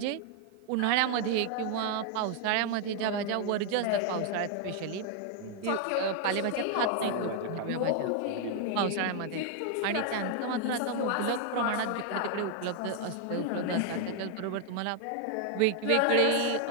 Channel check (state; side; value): different; both; correlation 0.00